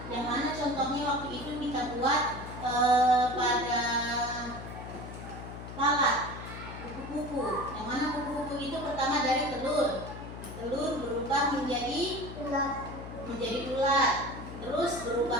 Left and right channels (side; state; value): left; noise; hum, 11 dB below the sound